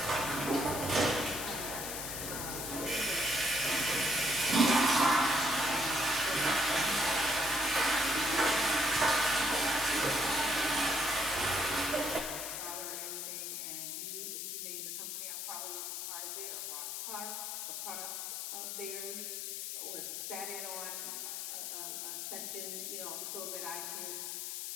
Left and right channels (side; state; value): left; noise; hiss, 4 dB below the sound